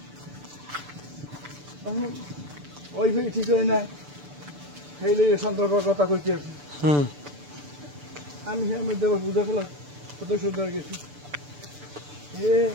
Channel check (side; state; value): left; late; 6.9 ms